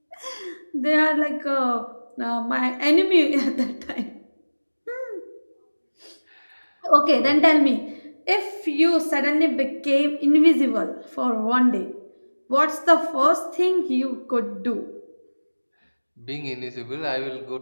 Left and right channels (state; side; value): inverted; both; correlation -1.00